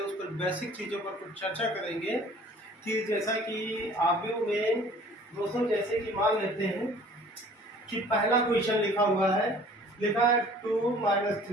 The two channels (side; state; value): both; normal; correlation 0.51